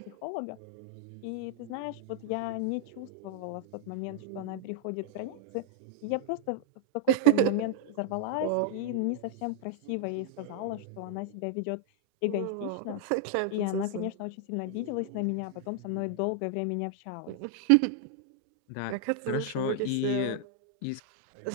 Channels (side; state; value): both; different; correlation 0.00